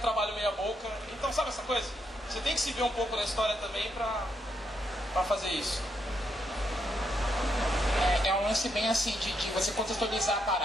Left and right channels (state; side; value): normal; both; correlation 0.78